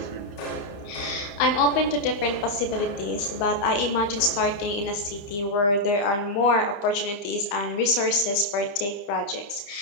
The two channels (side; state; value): right; late; 30 ms